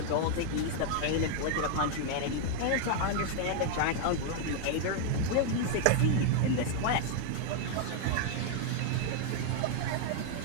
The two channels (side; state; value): both; different; correlation 0.00